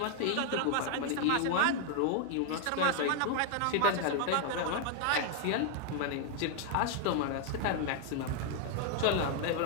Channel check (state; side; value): different; both; correlation 0.00